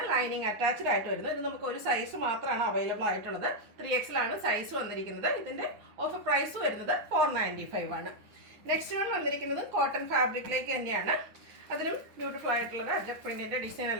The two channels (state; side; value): late; left; 9.8 ms